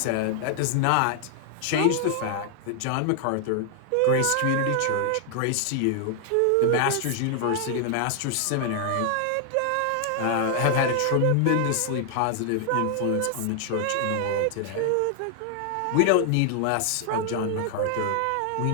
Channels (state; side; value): different; both; correlation 0.00